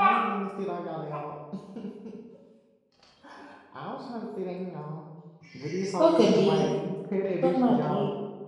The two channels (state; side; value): identical; both; correlation 1.00